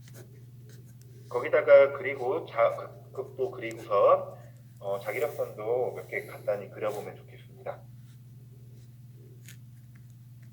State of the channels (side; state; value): both; identical; correlation 1.00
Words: 거기다가 그리고 극도 그리고선 자기력선도 몇 개 간단히 그려보면 좋겠습니다.